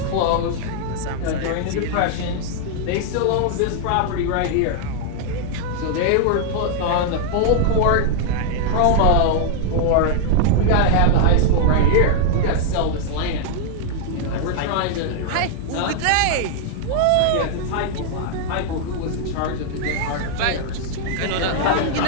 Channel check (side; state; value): both; different; correlation -0.01